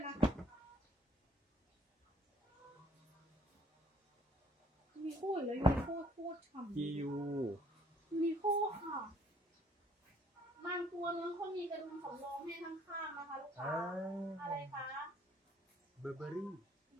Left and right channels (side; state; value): both; normal; correlation 0.61